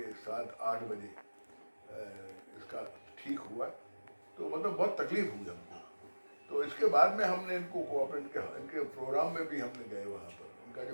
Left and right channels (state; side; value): inverted; both; correlation -1.00